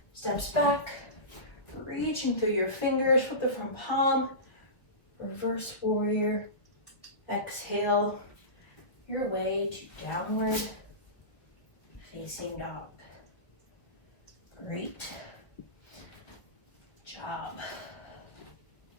steps back, reaching through your fingers. Flip the front palm, reverse warrior. Exhale your way to downward facing dog. Great job.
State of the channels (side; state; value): right; late; 1.1 ms